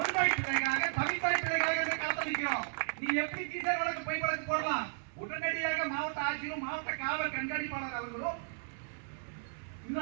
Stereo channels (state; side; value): silent; left; 55 dB below the other